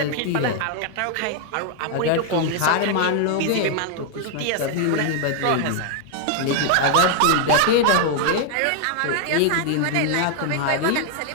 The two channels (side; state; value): both; different; correlation 0.00